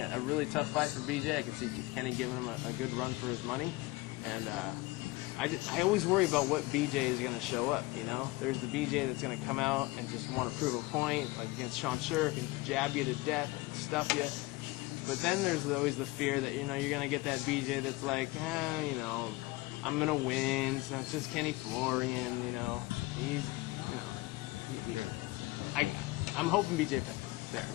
a really tough fight for BJ. I could see Kenny giving him a good run for his money. And I always worry about what BJ is going to show up, There's the BJ that's going to come out and just want to prove a point, like against Sean Shirk, and jab you to death, and stuff you. But then there's always the fear that, you're going to get that BJ that's like, I'm going to win. It's not just Kenny Florian, He's, I'm hoping BJ Penn.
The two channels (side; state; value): right; quieter; 21.3 dB